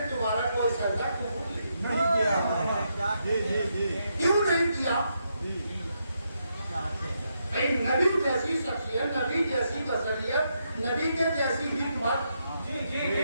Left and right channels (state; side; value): inverted; both; correlation -0.80